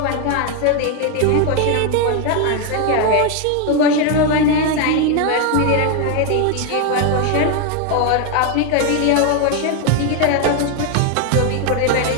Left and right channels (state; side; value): different; both; correlation 0.01